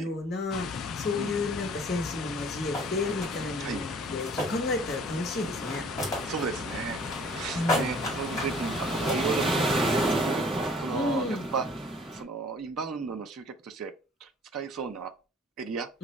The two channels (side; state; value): both; normal; correlation 0.53